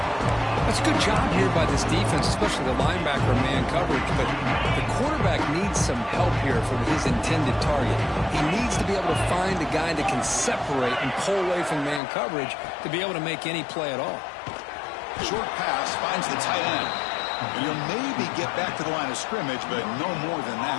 That's a good job here by this defense, especially the linebacker man coverage, but the quarterback needs some help here from his intended target. He needs to be able to find a guy that can separate and pull away from man coverage to be able to make any play at all. Short pass finds the tight end. And he'll maybe get back to the line of scrimmage, but no more than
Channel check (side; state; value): right; drops out; at 12.0 s